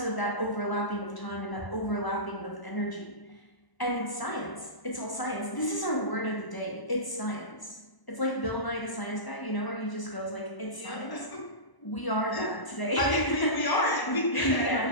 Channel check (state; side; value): late; right; 1.0 ms